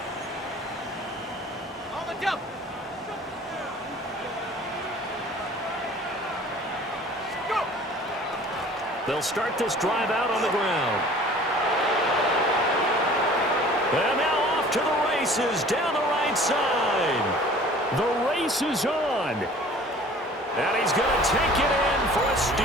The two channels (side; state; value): both; normal; correlation 0.48